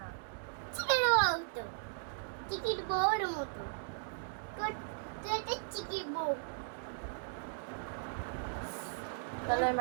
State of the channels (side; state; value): left; silent; digital silence